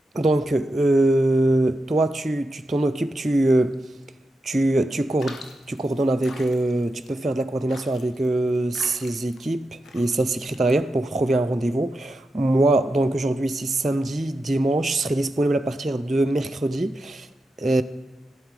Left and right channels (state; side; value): normal; both; correlation 0.88